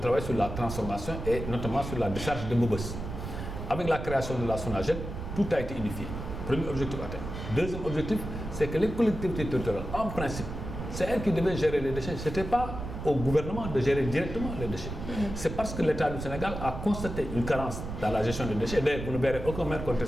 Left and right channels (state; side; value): noise; right; rumble, 7 dB below the sound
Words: sur la transformation et notamment sur la décharge de Mobos. Avec la création de la SONAGED, tout a été unifié. Premier objectif atteint. Deuxième objectif, c'est que les collectivités territoriales, en principe, c'est elles qui devaient gérer les déchets. Ce n'était pas au gouvernement de gérer directement les déchets. C'est parce que l'État du Sénégal a constaté une carence dans la gestion des déchets. D'ailleurs, vous ne verrez aucun maire